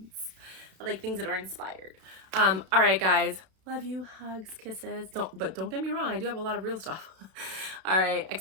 I like things that are inspired. All right, guys. Love you. Hugs, kisses. But don't get me wrong. I do have a lot of real stuff. All right.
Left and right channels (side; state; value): left; late; 32 ms